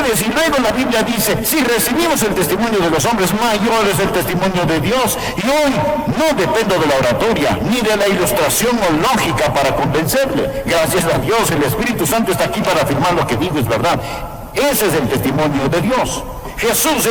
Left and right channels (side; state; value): both; identical; correlation 1.00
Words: Y luego la Biblia dice, si recibimos el testimonio de los hombres, mayor es el testimonio de Dios. Y hoy no dependo de la oratoria, ni de la ilustración o lógica para convencerle. Gracias a Dios, el Espíritu Santo está aquí para afirmar lo que digo es verdad. Ese es el testimonio de Dios. Jesús